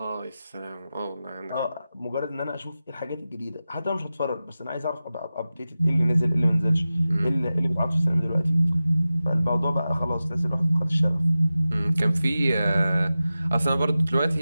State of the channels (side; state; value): both; inverted; correlation -0.94